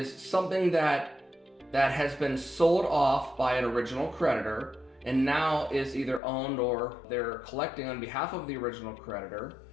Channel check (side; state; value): right; drops out; at 6.2 s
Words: something that has been sold off by an original creditor and now is either owned or they're collecting on behalf of the original creditor